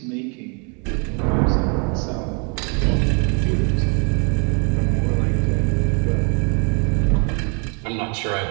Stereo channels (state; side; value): quieter; left; 36.3 dB